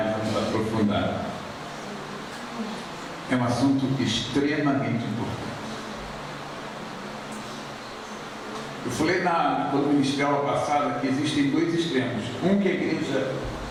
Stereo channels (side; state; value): both; identical; correlation 1.00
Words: vamos aprofundar. É um assunto extremamente importante. Eu falei quando ministrei a aula passada que existem dois extremos. Um que a igreja